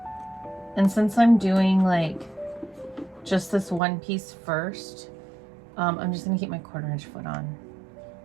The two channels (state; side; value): drops out; left; at 3.8 s